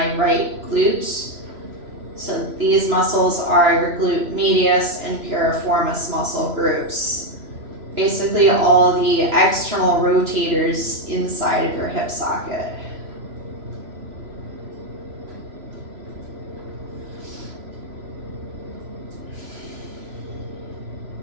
right glutes. So these muscles are your glute medius and piriformis muscle groups. Basically all the external rotators inside of your hip socket.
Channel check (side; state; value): left; late; 3.0 ms